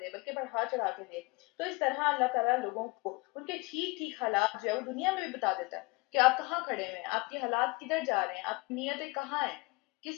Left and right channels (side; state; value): right; quieter; 25.8 dB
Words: دے، بلکہ بڑھا چڑھا کے دے. تو اس طرح اللہ تعالیٰ لوگوں کو ان کے ٹھیک ٹھیک حالات جو ہے وہ دنیا میں بھی بتا دیتا ہے کہ آپ کہاں کھڑے ہوئے ہیں، آپ کے حالات کدھر جا رہے ہیں، آپ کی نیتیں کہاں ہیں،